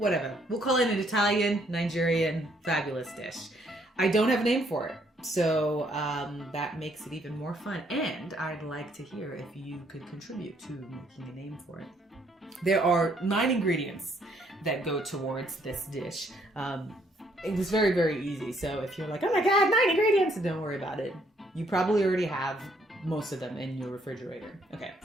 We'll call it an Italian, Nigerian, fabulous dish. I don't have a name for it, so that makes it even more fun. And I'd like to hear if you could contribute to making a name for it. There are 9 ingredients that go towards this dish. It was very, very easy. So if you're like, oh my God, 9 ingredients, don't worry about it. You probably already have most of them in your refrigerator. Okay,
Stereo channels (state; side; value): normal; both; correlation 0.68